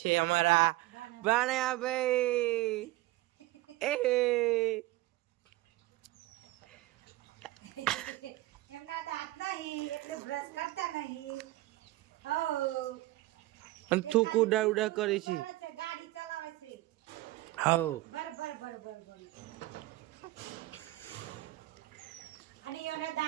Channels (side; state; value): left; quieter; 18.5 dB